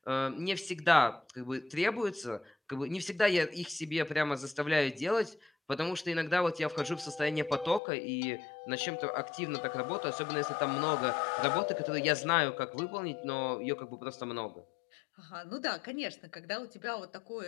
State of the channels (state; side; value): drops out; right; at 7.8 s